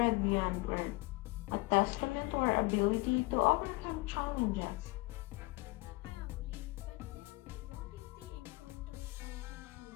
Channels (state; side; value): quieter; right; 23.2 dB